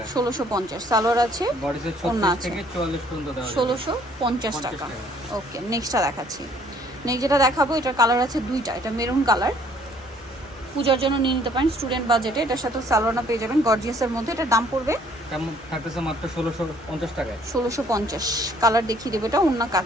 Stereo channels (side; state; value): both; normal; correlation 0.61